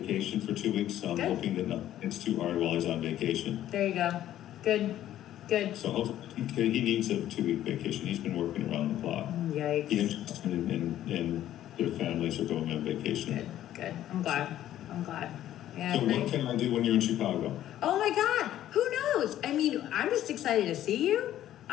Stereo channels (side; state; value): right; quieter; 12.4 dB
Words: for 2 weeks, so I'm Good. hoping that it's too hard while he's on vacation. There you go. Good. So hopefully he needs a 2-week vacation. He's been working around the clock. Yikes. He interested in their families are going on vacation. Good. I'm glad. Yeah. So what can I do when you're in Chicago? Oh my God. Who knows? I mean, I'm just excited to see you.